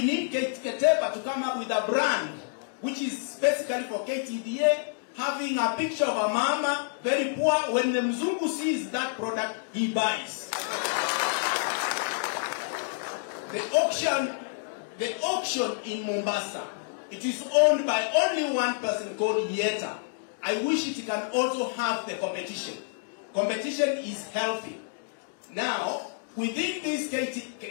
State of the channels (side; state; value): right; silent; digital silence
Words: need Ketepa to come up with a brand which is basically for KTDA, having a picture of a mama, very poor. When the Mzungu sees that product, he buys. The auction in Mombasa, it is owned by only one person called Yeta. I wish it can also have the competition. Competition is healthy. Now, within this